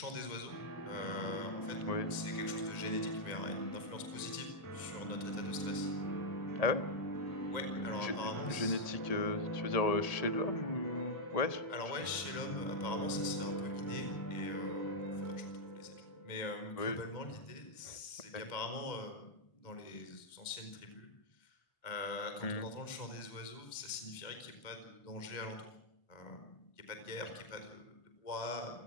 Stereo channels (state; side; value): late; right; 1.9 ms